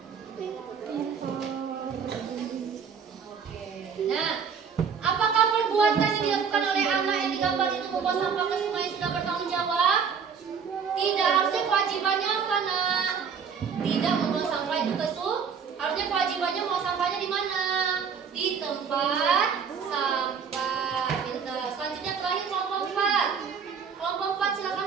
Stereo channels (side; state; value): left; quieter; 6.6 dB